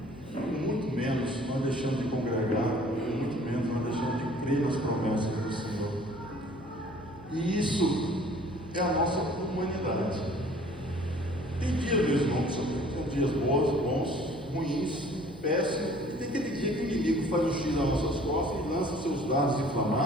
muito menos nós deixamos de congregar, muito menos nós deixamos de crer nas promessas do Senhor. E isso é a nossa humanidade. Tem dias, meus irmãos, são dias bons, ruins, péssimos, e tem aquele dia que o inimigo faz um X nas nossas costas e lança seus dados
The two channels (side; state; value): left; noise; hum, 19 dB below the sound